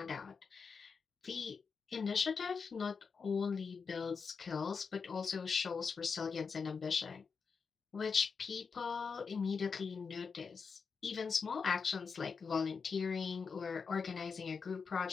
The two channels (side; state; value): right; quieter; 5.4 dB